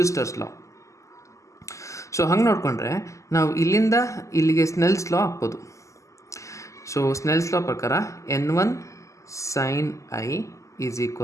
ಲಾ. ಸೊ ಹಂಗೆ ನೋಡಿಕೊಂಡ್ರೆ ನಾವು ಇಲ್ಲಿಂದ ಇಲ್ಲಿಗೆ ಸ್ನೆಲ್ಸ್ ಲಾ ಹಾಕ್ಬೋದು. ಸೊ ಸ್ನೆಲ್ಸ್ ಲಾ ಪ್ರಕಾರ N1 sin I is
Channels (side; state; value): right; late; 0.15 ms